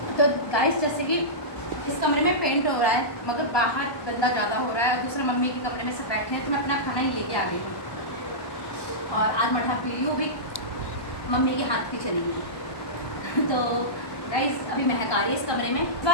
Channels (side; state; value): right; late; 1.2 ms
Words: तो गाइस जैसे कि इस कमरे में पेंट हो रहा है मगर बाहर गंदा ज़्यादा हो रहा है और दूसरे मम्मी के कमरे में सब बैठे हैं, तो मैं अपना खाना ही लेके आ गई हूँ। और आज मठा पी रही हूँ भी, मम्मी के हाथ की चली गई। तो गाइस अभी महक आ रही है इस कमरे में। इस